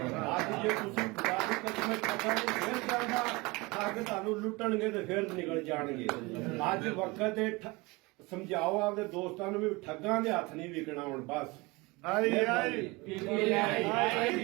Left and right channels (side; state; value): left; quieter; 24.4 dB